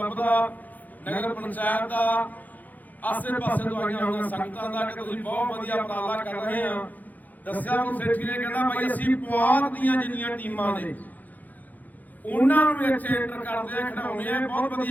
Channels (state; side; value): late; right; 0.082 ms